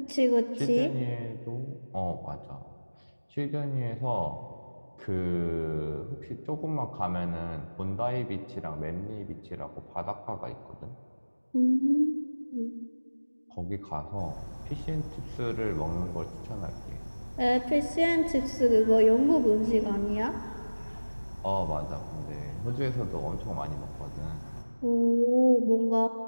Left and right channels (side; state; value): both; inverted; correlation -1.00